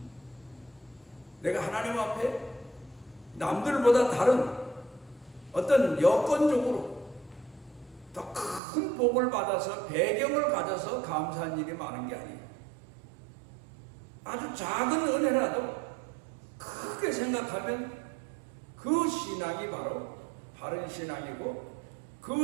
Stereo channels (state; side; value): drops out; left; at 8.6 s